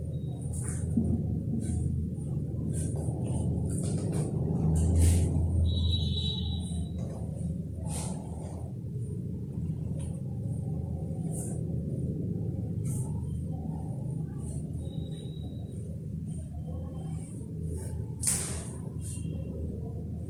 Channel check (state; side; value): identical; both; correlation 1.00